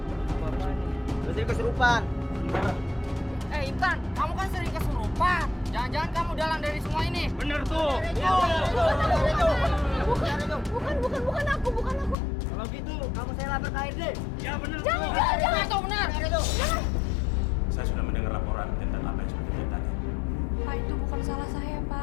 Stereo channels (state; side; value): drops out; right; at 12.2 s